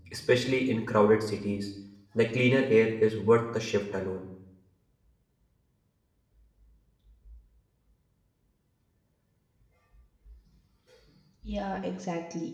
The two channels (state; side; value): identical; both; correlation 1.00